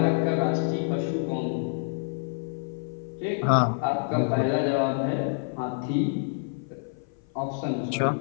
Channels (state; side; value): silent; right; 56 dB below the other